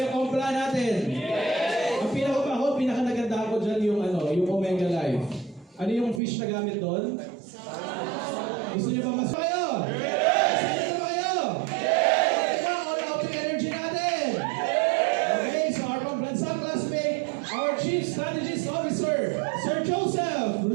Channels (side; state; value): left; drops out; at 6.2 s